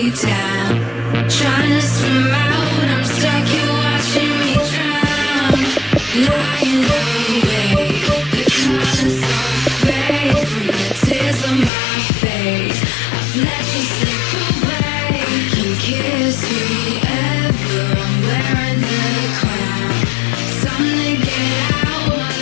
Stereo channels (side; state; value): right; drops out; at 11.7 s